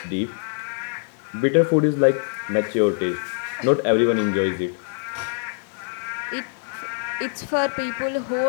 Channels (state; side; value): silent; right; digital silence